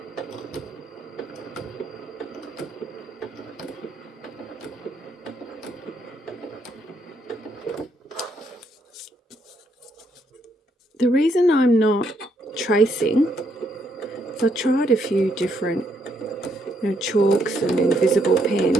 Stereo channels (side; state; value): both; normal; correlation 0.74